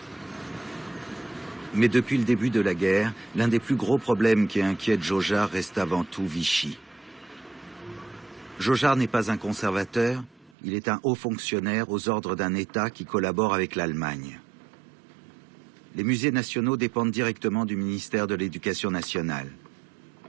Mais depuis le début de la guerre, l'un des plus gros problèmes qui inquiète Jaujar reste avant tout Vichy. Jaujar n'est pas un conservateur, il est un haut fonctionnaire aux ordres d'un État qui collabore avec l'Allemagne. Les musées nationaux dépendent directement du ministère de l'Éducation nationale.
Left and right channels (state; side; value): drops out; left; at 10.5 s